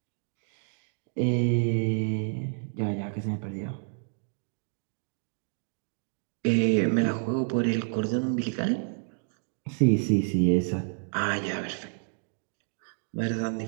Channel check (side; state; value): left; silent; 58 dB below the other